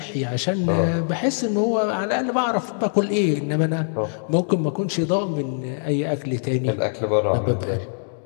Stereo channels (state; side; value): silent; right; 64 dB below the other